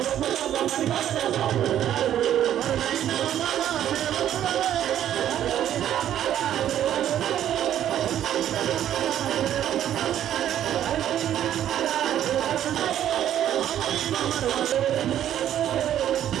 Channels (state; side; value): quieter; left; 11.0 dB